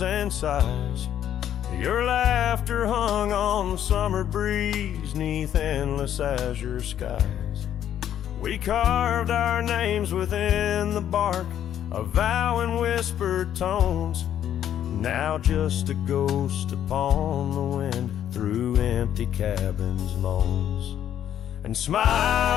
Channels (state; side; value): quieter; right; 10.4 dB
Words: and sighs. Your laughter hung on the summer breeze, 'neath endless azure skies. We carved our names within the bark, a vow in whispered tones, now just a ghost upon the wind through empty cabins' moans. And